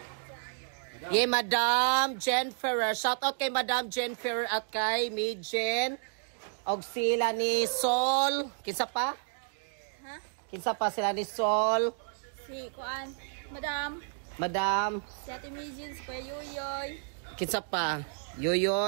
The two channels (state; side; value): silent; left; digital silence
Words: Madam Jen Ferrer. Shout out kay Madam Jen Ferrer at kay Mijin. Og sila ni Sol. Kinsa pa? Ha? Kinsa pa sila ni Sol? Si Kuan, Madam. Si Ate Mijin, si Kuya Yoyoy. Kinsa pa?